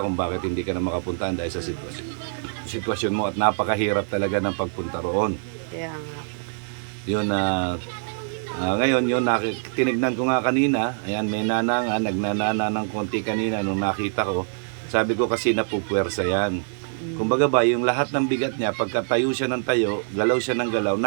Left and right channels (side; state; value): left; silent; digital silence